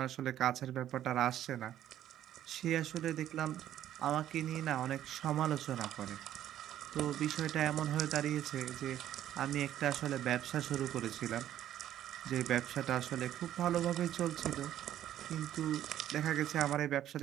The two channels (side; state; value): left; quieter; 11.8 dB